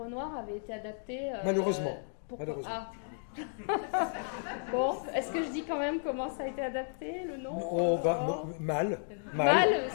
Noir avait été adapté... Malheureusement. Bon, est-ce que je dis quand même comment ça a été adapté, le nom? Mal,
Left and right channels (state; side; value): silent; right; 56 dB below the other